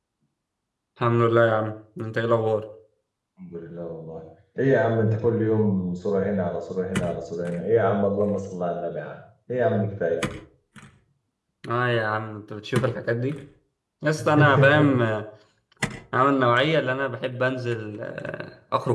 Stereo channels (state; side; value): identical; both; correlation 1.00